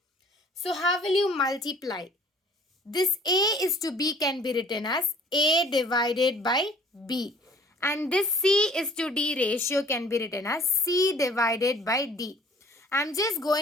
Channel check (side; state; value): both; normal; correlation 0.52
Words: So how will you multiply? This A is to B can be written as A divided by B. And this C is to D ratio can be written as C divided by D. I'm just